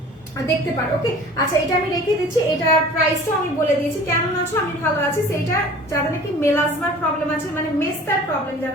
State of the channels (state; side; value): normal; both; correlation 0.45